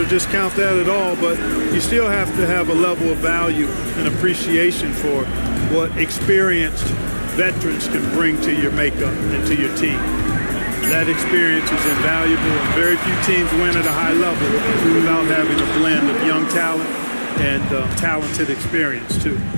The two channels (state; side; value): inverted; both; correlation -1.00